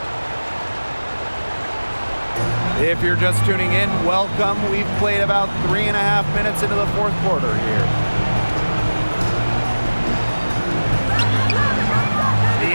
If you're just tuning in, welcome. We've played about 3.5 minutes into the fourth quarter here. The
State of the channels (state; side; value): inverted; both; correlation -1.00